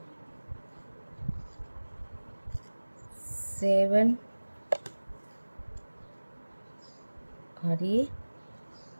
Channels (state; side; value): inverted; both; correlation -1.00